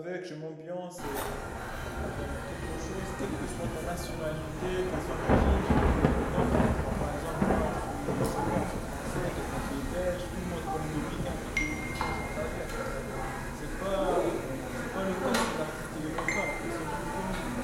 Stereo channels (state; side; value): identical; both; correlation 1.00